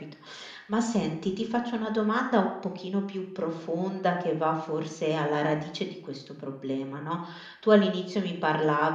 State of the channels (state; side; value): identical; both; correlation 1.00